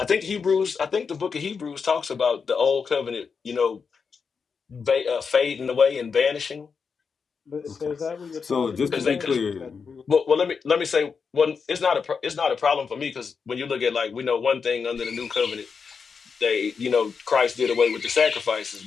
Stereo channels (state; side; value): quieter; right; 5.6 dB